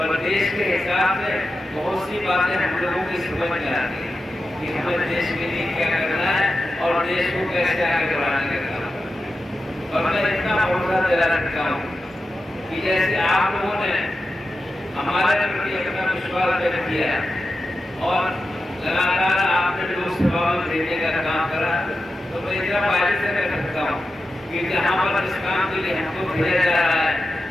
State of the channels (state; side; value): normal; both; correlation 0.91